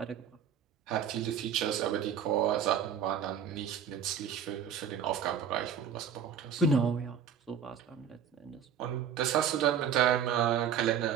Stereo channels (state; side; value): quieter; left; 8.0 dB